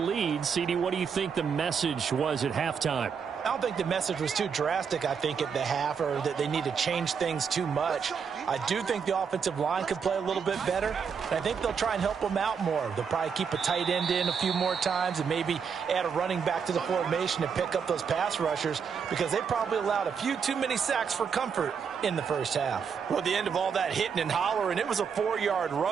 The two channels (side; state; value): left; quieter; 6.5 dB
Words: CD, what do you think the message was at halftime? I don't think the message was too drastic, I think, at the half, or that they need to change things too much. I do think the offensive line could play a little bit better, and I think they'll try and help them out more. They'll probably keep a tight end in a few more times and maybe add a running back to the formation and pick up those pass rushers, because they probably allowed a few too many sacks for comfort in the first half. Well, at the end of all that hitting and hollering, it was a 4-yard